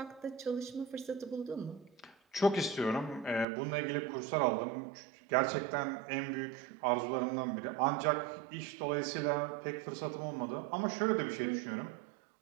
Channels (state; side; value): drops out; left; at 3.5 s